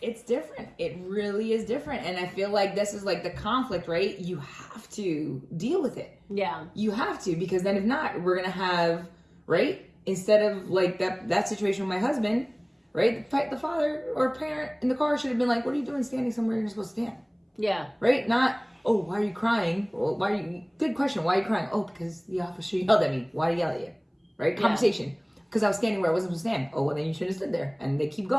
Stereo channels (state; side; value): identical; both; correlation 1.00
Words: different. It really is different. And I feel like this is like the conflict, right? You have to deal with it. Yeah. You have to, because then if not, we're going to have, right? Instead of like that situation with my husband, right? The father or parent in the car should have been like, what are you doing standing somewhere you're supposed to stand? Yeah. Right? Not, oh, why are you crying? Well, good question. Why are you crying? Oh, because the officer yelled at me. Why did he yell at you? Right? Conversation. Because I was standing where I wasn't supposed to stand. Oh, well, then you should have stood there. And they keep